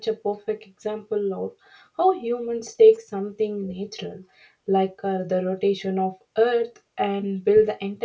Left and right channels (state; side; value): identical; both; correlation 1.00